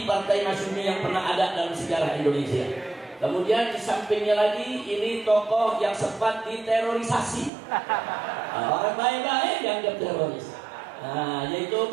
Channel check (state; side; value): drops out; left; at 7.5 s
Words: Partai Masyumi yang pernah ada dalam sejarah Indonesia. Kemudian di sampingnya lagi ini tokoh yang sempat diterorisasi. Orang baik-baik yang diteroris. Yaitu